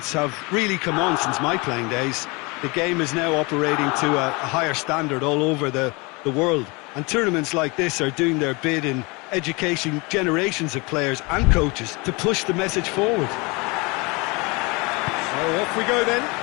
have really come on since my playing days. The game is now operating to a higher standard all over the world, and tournaments like this are doing their bit in educating generations of players and coaches to push the message forward. So off we go then.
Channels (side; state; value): right; quieter; 27.0 dB